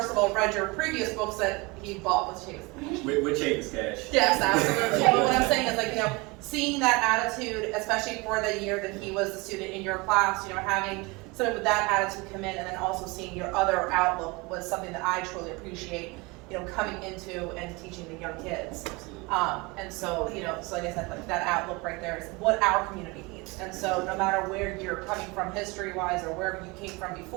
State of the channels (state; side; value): quieter; left; 25.6 dB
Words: of all, read your previous books that he bought with Chase. With Chase Cash. Yes, absolutely. But what I'm saying is, like, you know, seeing that attitude, especially for the year that he was the student in your class, you know, having someone with that attitude come in, and then also seeing your other outlook was something that I truly appreciate, you know, coming into and teaching the young kids. And so, you know, so like I said, like that outlook right there is what our community needs. And so no matter where you're coming from history-wise or wherever you came from